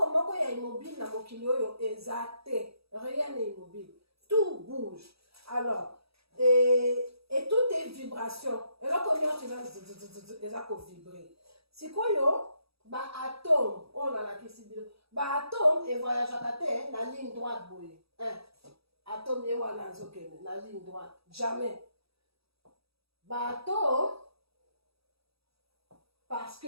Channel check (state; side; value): late; left; 0.77 ms